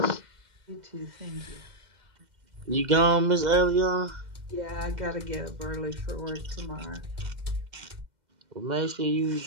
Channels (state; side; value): late; left; 2.1 ms